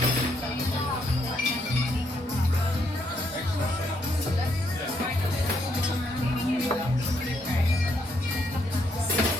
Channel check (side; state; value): both; normal; correlation 0.74